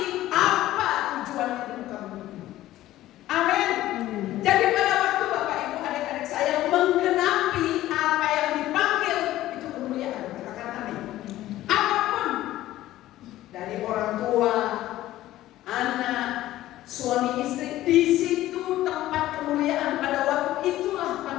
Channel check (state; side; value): quieter; right; 14.9 dB